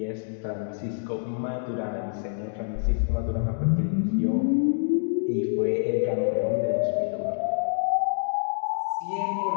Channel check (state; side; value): silent; right; digital silence